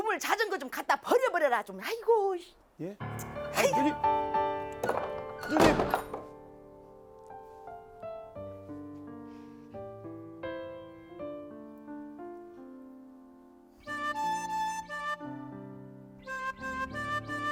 자전거 좀 갖다 버려버려라 좀. 아이고. 예? 아, 누님. 누님.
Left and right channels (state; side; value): identical; both; correlation 1.00